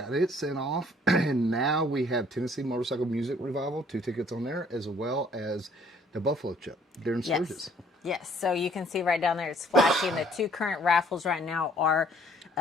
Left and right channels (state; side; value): normal; both; correlation 0.60